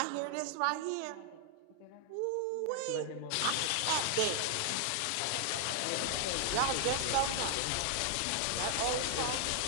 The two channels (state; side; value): different; both; correlation 0.00